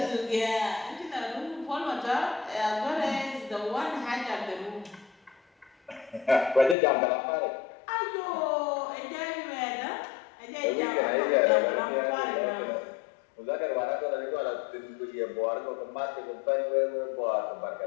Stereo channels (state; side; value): drops out; right; at 6.8 s